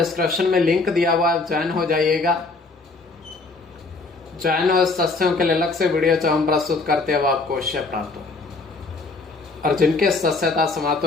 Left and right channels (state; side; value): quieter; right; 3.7 dB